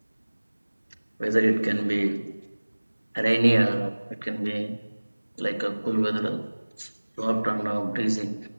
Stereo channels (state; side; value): inverted; both; correlation -1.00